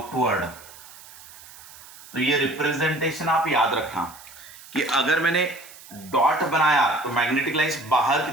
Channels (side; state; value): right; noise; hiss, 19 dB below the sound